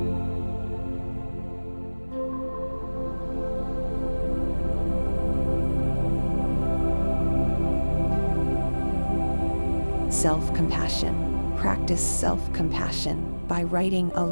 Self-compassion. Practice self-compassion by writing a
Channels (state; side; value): inverted; both; correlation -1.00